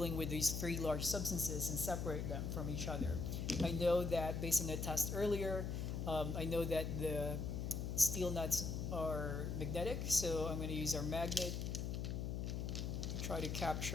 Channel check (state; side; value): noise; left; hum, 2 dB below the sound